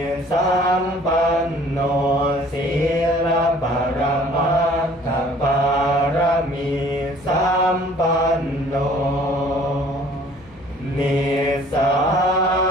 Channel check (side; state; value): left; noise; hum, 26 dB below the sound